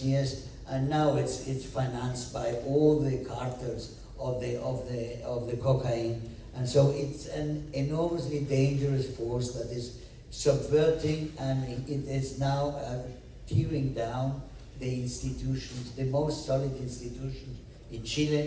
years, and now it's financed by all the cartels of the cocaine. And so it's an enormously dangerous force that is subverting, and it is now tearing down the institutions, the most solid institutions in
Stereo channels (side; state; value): both; identical; correlation 1.00